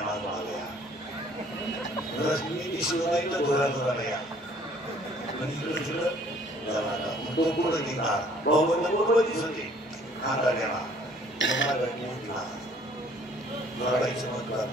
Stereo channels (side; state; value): both; normal; correlation 0.58